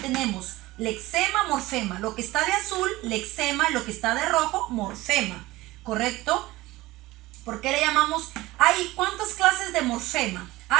lexema, morfema. Lo que está de azul, lexema, y lo que está de rojo, morfema. ¿Correcto? ¿Por qué le llamamos? Hay ¿cuántas clases de morfema?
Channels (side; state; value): left; quieter; 18.9 dB